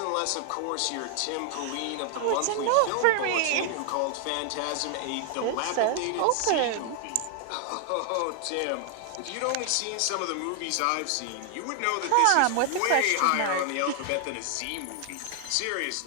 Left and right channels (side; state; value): both; different; correlation 0.00